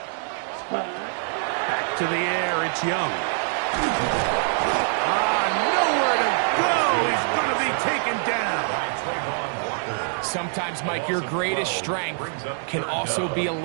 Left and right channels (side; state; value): left; silent; 62 dB below the other